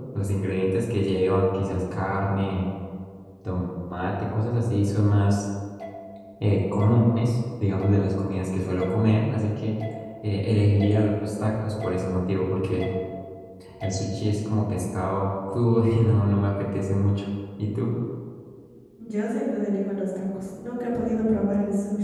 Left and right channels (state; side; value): identical; both; correlation 1.00